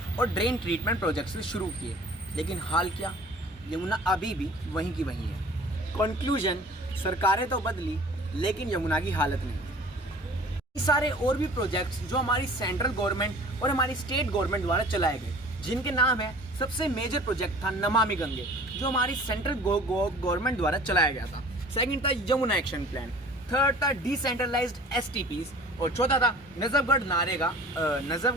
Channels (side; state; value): both; normal; correlation 0.46